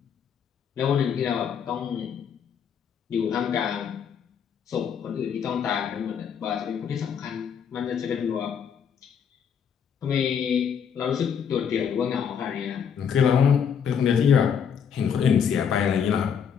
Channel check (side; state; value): right; quieter; 7.5 dB